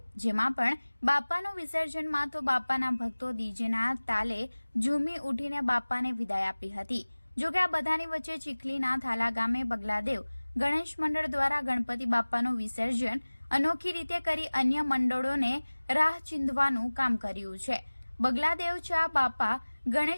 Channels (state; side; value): inverted; both; correlation -1.00